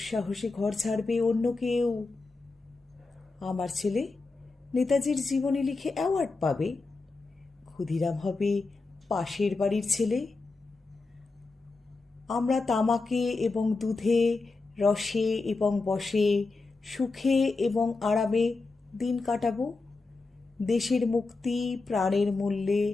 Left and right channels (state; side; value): quieter; right; 3.8 dB